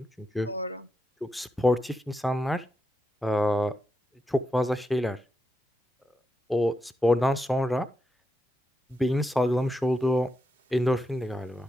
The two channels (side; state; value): both; normal; correlation 0.86